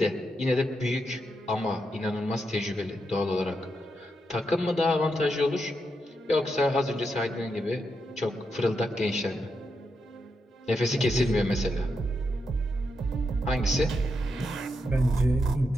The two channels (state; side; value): normal; both; correlation 0.83